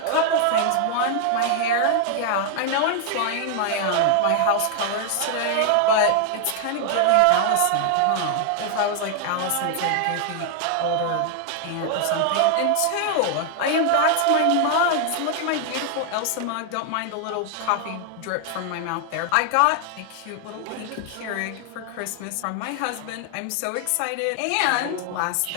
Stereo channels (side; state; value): both; different; correlation 0.00